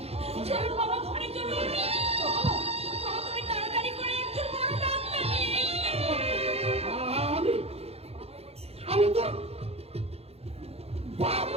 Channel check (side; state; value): left; late; 0.29 ms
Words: চলো বাবা, ঘরে চলো। বাবা, বাবা, তুমি তাড়াতাড়ি করে একজন বড় ডাক্তার নিয়ে এসো। আমি তো বাপ